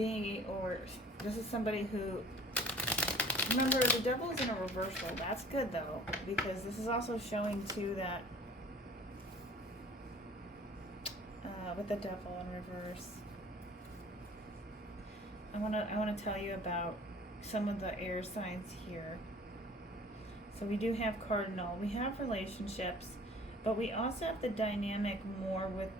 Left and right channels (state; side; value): normal; both; correlation 0.49